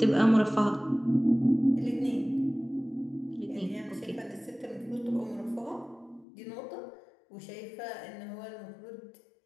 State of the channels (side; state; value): right; drops out; at 6.2 s